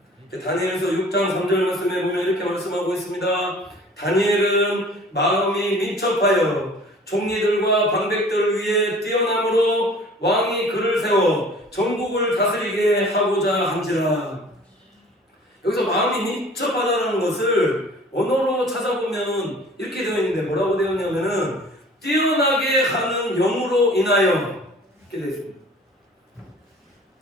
다니엘서 6장 3절 말씀에 보면 이렇게 말씀하고 있습니다. 다니엘은 마음이 민첩하여 총리들과 방백들 위에 뛰어남으로 왕이 그를 세워 전국을 다스리게 하고자 한지라. 여기서 마음이 민첩하다는 것을 언어로 찾아보면 이렇게 되어 있는데, 뭐라고 되어 있냐면은 뛰어나게 하는 영으로 인하여, 이렇게 되어 있습니다.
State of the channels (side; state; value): both; normal; correlation 0.48